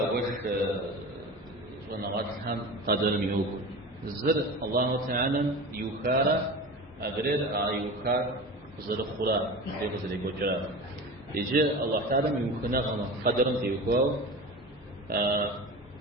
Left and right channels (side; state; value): both; normal; correlation 0.32